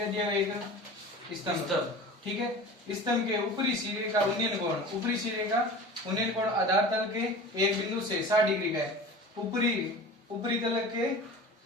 दिया है एक स्तंभ, ठीक है। स्तंभ के ऊपरी सिरे का उन्नयन कोण आधार तल के एक बिंदु से 60 डिग्री का है। ऊपरी तल के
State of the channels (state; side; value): normal; both; correlation 0.37